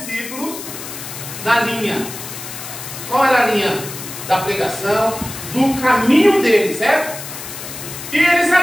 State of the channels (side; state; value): left; noise; hiss, 10 dB below the sound